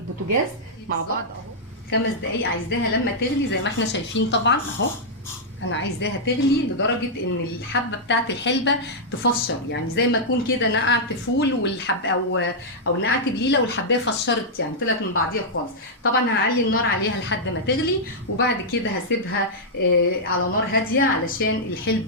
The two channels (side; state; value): both; normal; correlation -0.07